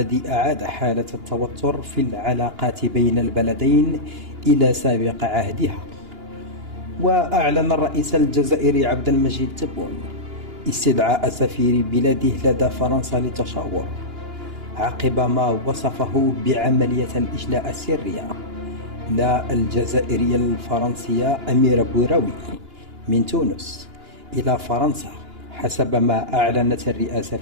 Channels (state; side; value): late; left; 2.9 ms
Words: أعاد حالة التوتر في العلاقات بين البلدين إلى سابق عهدها. وأعلن الرئيس الجزائري عبد المجيد تبون استدعاء سفير بلاده لدى فرنسا للتشاور عقب ما وصفه بعملية الإجلاء السرية للجزائرية الفرنسية أميرة بوراوي من تونس إلى فرنسا حسب ما أعلنت الرئاسة